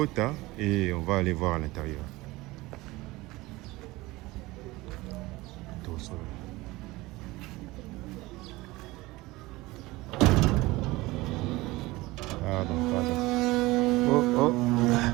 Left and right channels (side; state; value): left; quieter; 20.4 dB